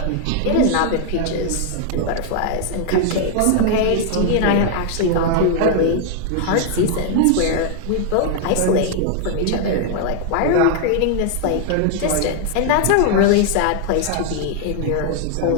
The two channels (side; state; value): both; different; correlation 0.00